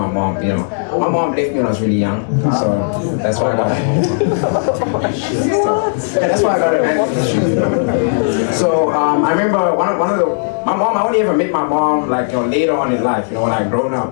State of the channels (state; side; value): silent; right; digital silence